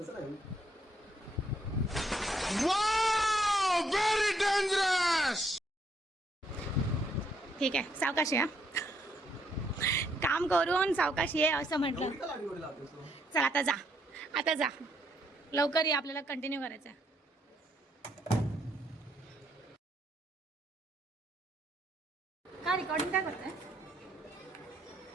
नाही. Wow! Very dangerous! ठीक आहे, सावकाशी हा. काम करून सावकाशी आहे असं म्हटलं. एवढी का लाडी लावतेस तू? चल आता जा, आता जा लवकर ये, आपल्याला कंटिन्यू करायचं आहे. का रेकॉर्डिंग काय करताय?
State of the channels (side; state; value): both; normal; correlation 0.72